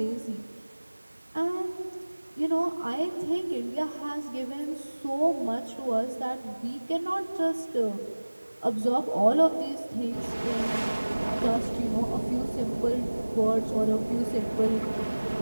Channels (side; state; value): both; inverted; correlation -1.00